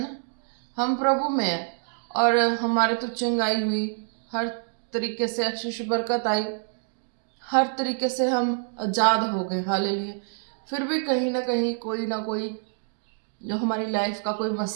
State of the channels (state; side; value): silent; left; digital silence